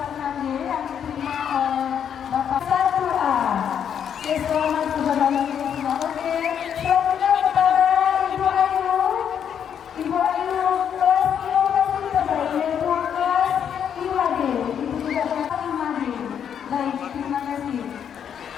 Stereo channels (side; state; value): right; quieter; 8.4 dB